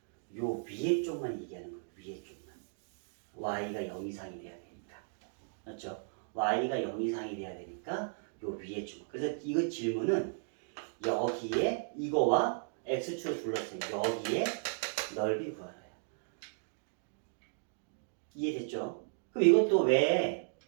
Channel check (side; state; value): left; silent; digital silence